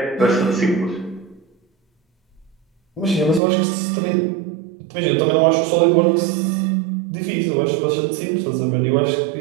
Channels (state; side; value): drops out; left; at 3.4 s